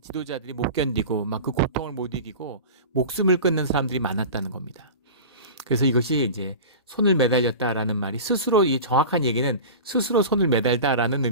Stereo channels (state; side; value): inverted; both; correlation -0.33